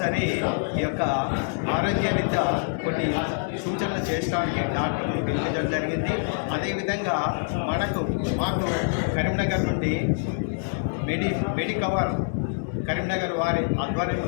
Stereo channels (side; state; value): right; silent; digital silence